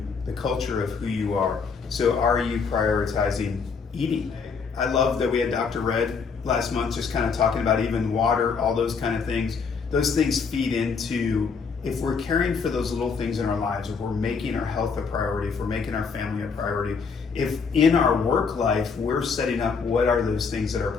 the culture of who you are. So are you prioritizing eating? I love that we had Dr. Red last month just kind of talking about even water, all those kind of things. Those things feed into, if we're caring for those little things in our lives, if we're making our health a priority, if we're making our family a priority, if in our work life we're setting up what are those things that are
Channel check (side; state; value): right; quieter; 5.4 dB